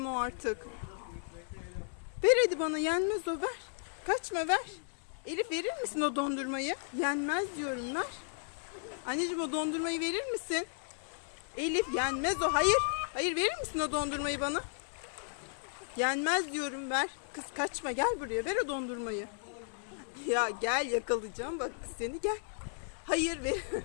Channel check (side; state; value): right; silent; digital silence